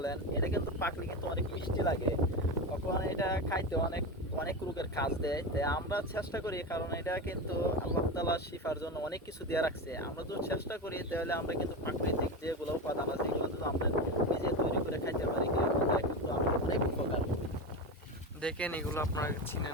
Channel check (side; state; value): both; normal; correlation 0.19